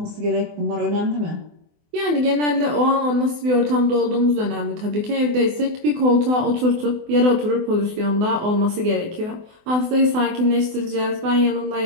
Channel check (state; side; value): late; left; 24 ms